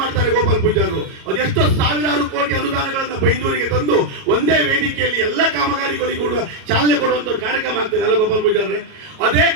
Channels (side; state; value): left; late; 37 ms